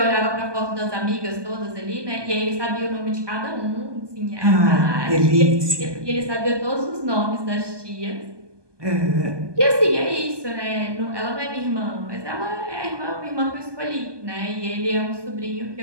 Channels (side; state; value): left; late; 1.2 ms